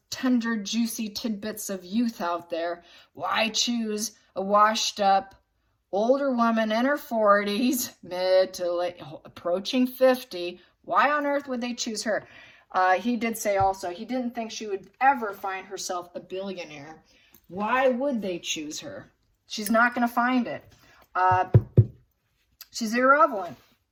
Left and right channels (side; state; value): both; identical; correlation 1.00